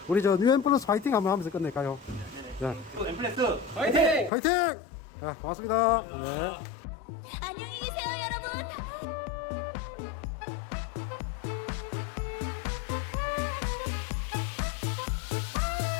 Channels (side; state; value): right; drops out; at 4.3 s